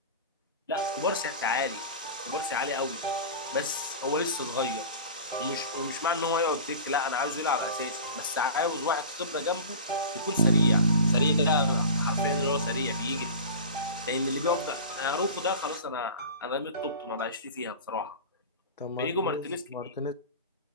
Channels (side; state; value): both; inverted; correlation -0.34